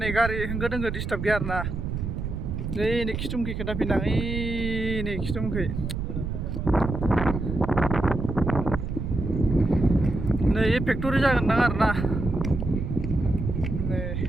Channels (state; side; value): noise; right; rumble, 4 dB below the sound